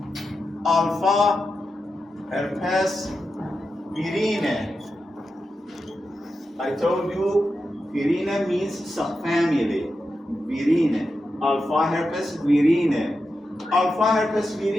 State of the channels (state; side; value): normal; both; correlation 0.89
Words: Alpha herpes virine. I told you virine means subfamily. Virine. Alpha herpes virine. Alpha herpes